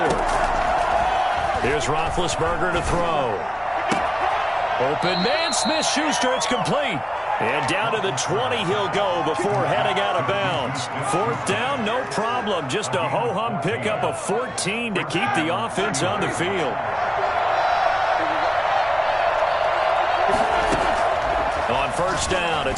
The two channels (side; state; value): both; identical; correlation 1.00